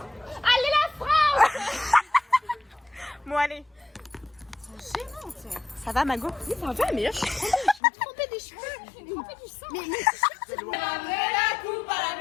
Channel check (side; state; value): right; drops out; at 7.8 s